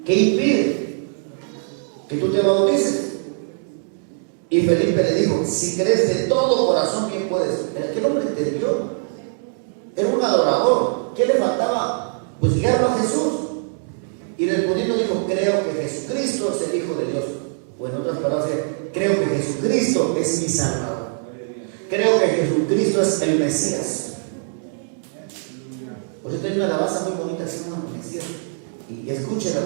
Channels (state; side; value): silent; left; digital silence